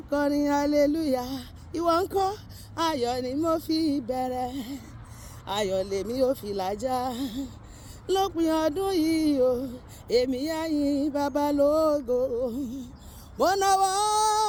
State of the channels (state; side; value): identical; both; correlation 1.00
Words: kọrin hallelujah. Ìwọ ńkọ́? Ayọ̀ ni mo fi bẹ̀rẹ̀, ayọ̀ lèmi ó fi làjà. Lópin ọdún yìí o, èmi á yìn bàbá lógo. Mo nawọ́